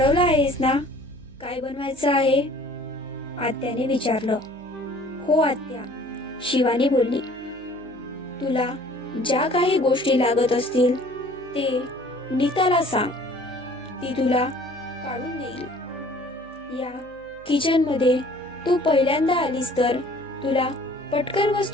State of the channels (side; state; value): right; noise; hum, 25 dB below the sound